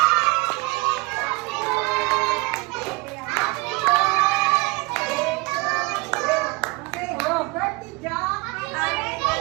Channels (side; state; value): left; quieter; 25.3 dB